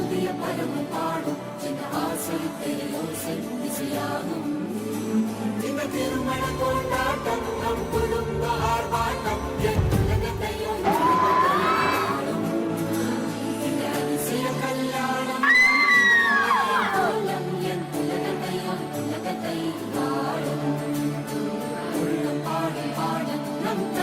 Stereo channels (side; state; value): both; identical; correlation 1.00